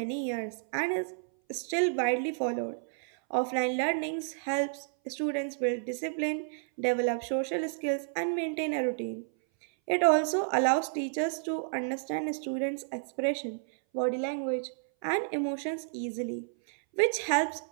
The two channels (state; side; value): silent; left; 57 dB below the other